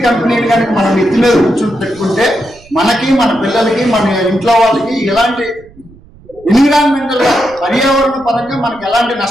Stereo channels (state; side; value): noise; right; rumble, 25 dB below the sound